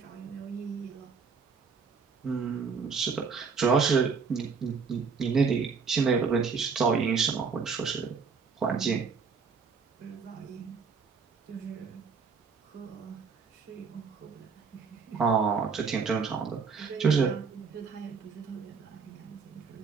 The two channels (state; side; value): quieter; left; 5.4 dB